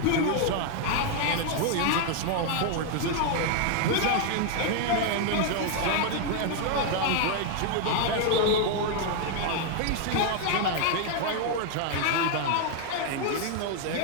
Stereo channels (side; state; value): both; different; correlation 0.00